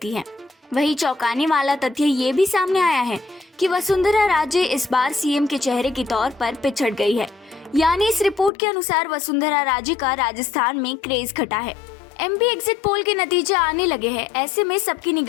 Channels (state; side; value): drops out; right; at 8.5 s